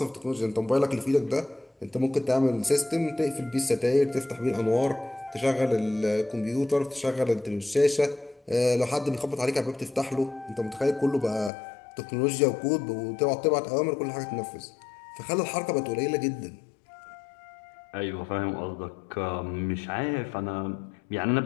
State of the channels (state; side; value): drops out; right; at 11.5 s